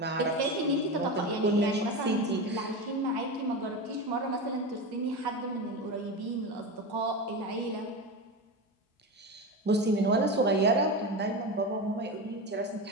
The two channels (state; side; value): normal; both; correlation 0.21